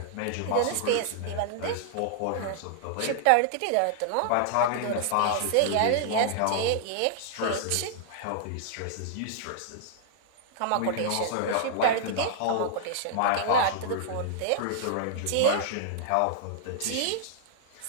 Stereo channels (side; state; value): both; different; correlation -0.01